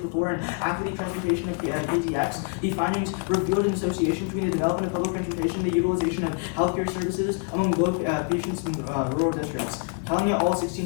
and after the transportation of KTX. The findings revealed an association between the development of public transportation and the utilization of healthcare services among local patients in rural districts. Telling it all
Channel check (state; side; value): quieter; right; 37.9 dB